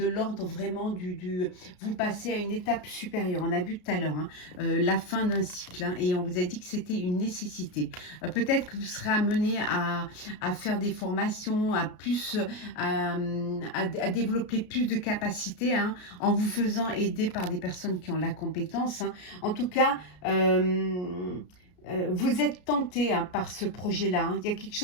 l'ordre vraiment vous passez à une étape supérieure. On a vu tout à l'heure, hein, la fin d'un cycle, hein, et on vous a dit que c'était une nécessité. Peut-être que vous serez amené à faire des formations, à développer plus de capacités, hein, en vous faisant aider par des personnes qui ont la compétence, hein. En tout cas, vous êtes tenté, hein, par ce projet-là, hein. Il y a quelque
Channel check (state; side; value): late; right; 33 ms